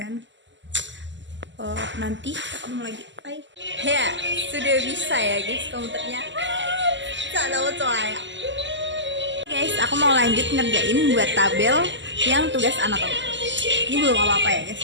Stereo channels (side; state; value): left; late; 0.54 ms